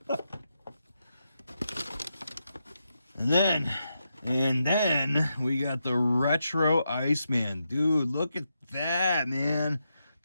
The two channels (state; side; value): inverted; both; correlation -0.85